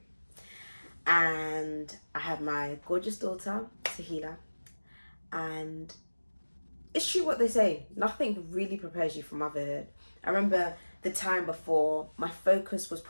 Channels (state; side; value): inverted; both; correlation -1.00